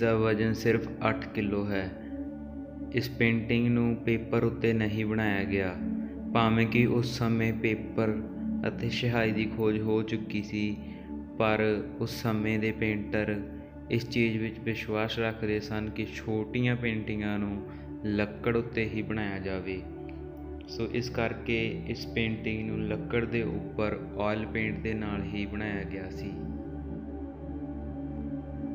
ਵਜ਼ਨ ਸਿਰਫ 8 ਕਿਲੋ ਹੈ। ਇਸ ਪੇਂਟਿੰਗ ਨੂੰ ਪੇਪਰ ਉੱਤੇ ਨਹੀਂ ਬਣਾਇਆ ਗਿਆ, ਭਾਵੇਂ ਕਿ ਉਸ ਸਮੇਂ ਪੇਪਰ ਅਤੇ ਸਿਹਾਈ ਦੀ ਖੋਜ ਹੋ ਚੁੱਕੀ ਸੀ, ਪਰ ਉਸ ਸਮੇਂ ਦੇ ਪੇਂਟਰ ਇਸ ਚੀਜ਼ ਵਿੱਚ ਵਿਸ਼ਵਾਸ ਰੱਖਦੇ ਸਨ ਕਿ ਛੋਟੀਆਂ ਪੇਂਟਿੰਗਾਂ ਨੂੰ ਲੱਕੜ ਉੱਤੇ ਹੀ ਬਣਾਇਆ ਜਾਵੇ। ਸੋ ਇਸ ਕਰਕੇ ਇਸ ਪੇਂਟਿੰਗ ਨੂੰ ਲੱਕੜ ਦੇ ਉੱਪਰ ਆਇਲ ਪੇਂਟ ਦੇ ਨਾਲ ਹੀ ਬਣਾਇਆ ਗਿਆ ਸੀ।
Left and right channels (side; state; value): both; identical; correlation 1.00